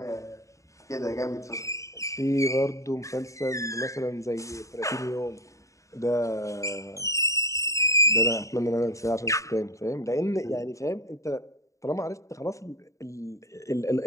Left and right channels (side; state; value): right; late; 0.15 ms